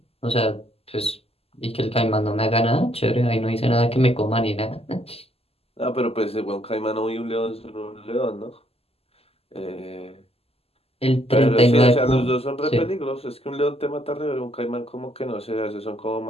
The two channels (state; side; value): late; right; 0.29 ms